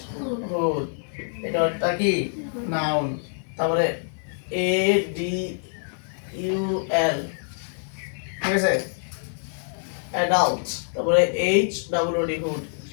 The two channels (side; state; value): right; silent; digital silence